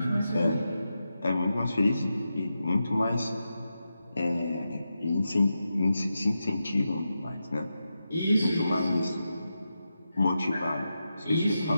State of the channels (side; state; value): both; inverted; correlation -0.89